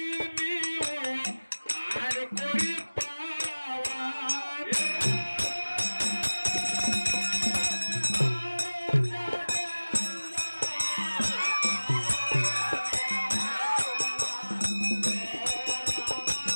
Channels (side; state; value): both; inverted; correlation -1.00